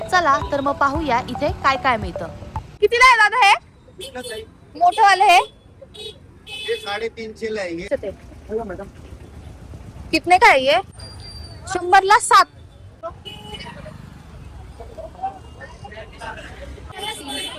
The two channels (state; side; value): identical; both; correlation 1.00